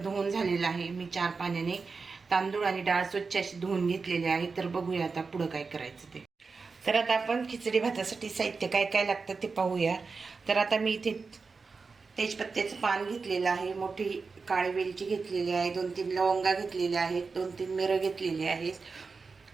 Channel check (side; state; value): left; quieter; 4.6 dB